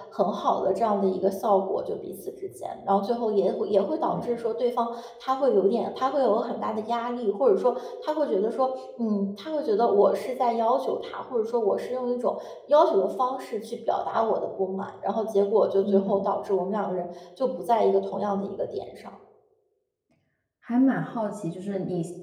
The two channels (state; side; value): identical; both; correlation 1.00